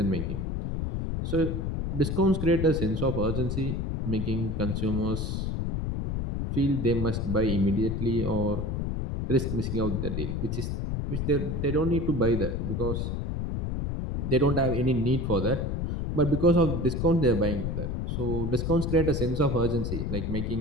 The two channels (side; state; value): left; noise; rumble, 2 dB below the sound